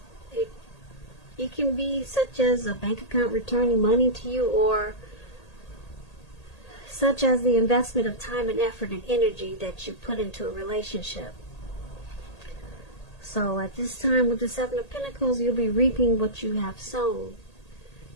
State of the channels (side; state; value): right; late; 1.8 ms